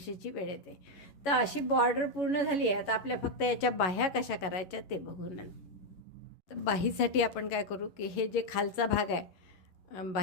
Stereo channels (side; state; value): right; late; 11 ms